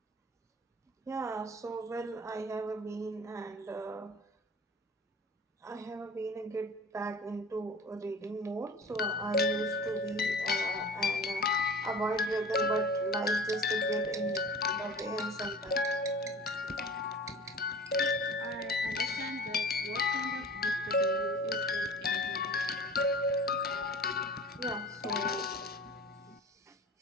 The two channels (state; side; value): normal; both; correlation 0.41